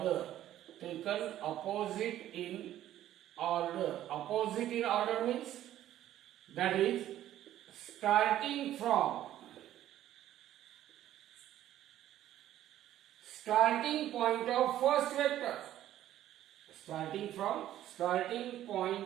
Opposite in order means that is starting point of first vector. Starting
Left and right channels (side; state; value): left; quieter; 12.6 dB